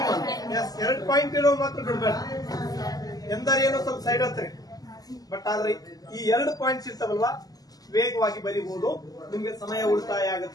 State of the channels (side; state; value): right; late; 0.18 ms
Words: ಎಸ್, 2 ಪಾಯಿಂಟ್ ಇರೋ ಮಾತ್ರ ಬಿಡ್ಬೇಡ. ಎಂದರೇನೋ ಸ್ವಲ್ಪ ಸೈಡ್ ಹತ್ರಿ, ಬಟ್ ಆದ್ರೆ ಈ 2 ಪಾಯಿಂಟ್ಸ್ ಇರ್ತಾವಲ್ವಾ, ವೇಗವಾಗಿ ಬರೀಬಹುದು. ನಿಮ್ಗೆ ಸಮಯ ಉಳಿತಾಯ